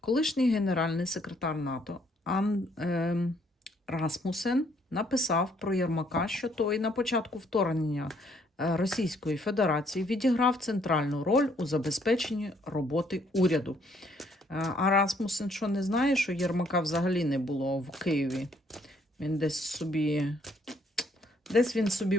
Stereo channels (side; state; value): both; normal; correlation 0.67